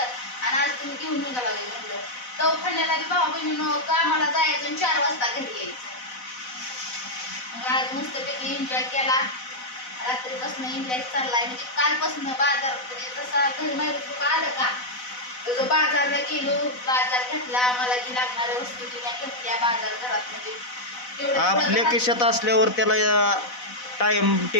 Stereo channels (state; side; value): late; right; 4.0 ms